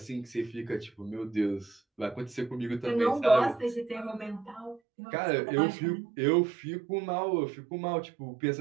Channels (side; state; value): left; drops out; at 4.8 s